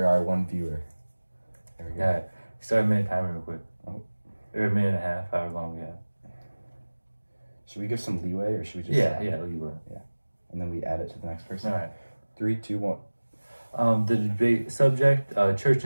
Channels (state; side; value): inverted; both; correlation -1.00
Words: our one viewer. There we go. Yeah. Start a minute timer real quick. Oh. Or a minute and a half, however long we have. Should we give some leeway or should we just leeway. and then we add it to the next person? All right. 3, 2, 1. The debate subject: church